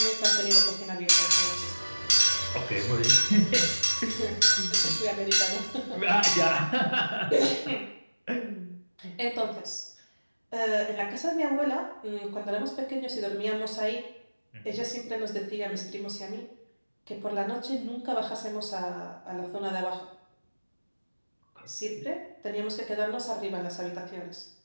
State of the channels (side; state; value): both; inverted; correlation -1.00